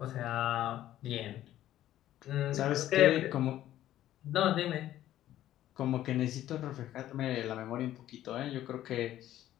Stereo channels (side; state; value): right; quieter; 13.1 dB